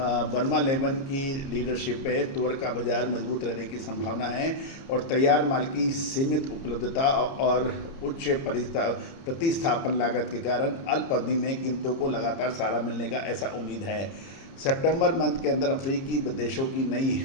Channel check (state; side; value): late; right; 30 ms